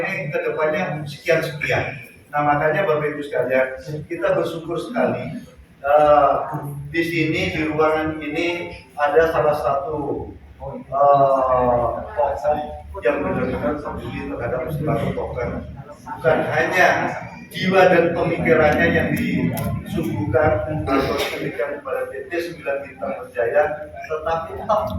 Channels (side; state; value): both; identical; correlation 1.00